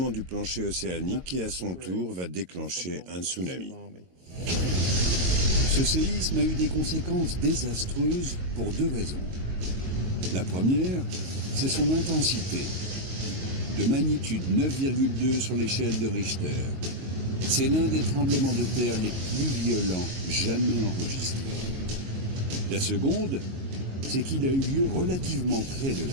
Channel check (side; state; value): left; late; 22 ms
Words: du plancher océanique qui, à son tour, va déclencher un tsunami. Ce séisme a eu des conséquences désastreuses pour deux raisons. La première, c'est son intensité. De magnitude 9,2 sur l'échelle de Richter. C'est l'un des tremblements de terre les plus violents jamais enregistrés. La seconde, c'est qu'il a eu lieu relativement près de